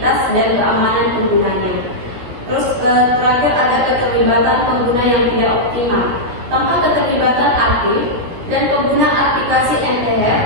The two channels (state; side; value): late; left; 17 ms